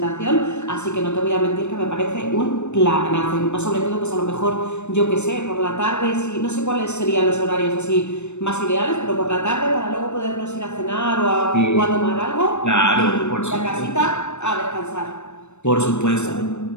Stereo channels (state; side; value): late; right; 0.82 ms